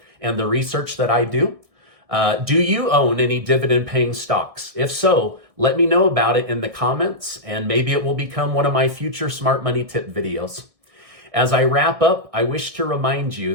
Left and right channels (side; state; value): left; late; 1.6 ms